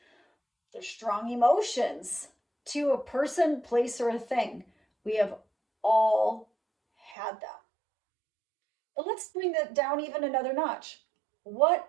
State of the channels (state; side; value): drops out; left; at 7.2 s